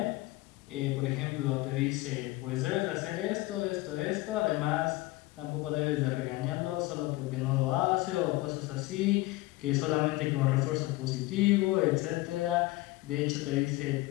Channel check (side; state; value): right; quieter; 19.5 dB